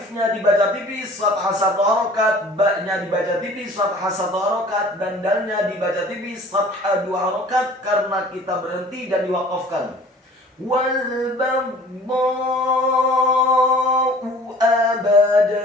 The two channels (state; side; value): normal; both; correlation 0.48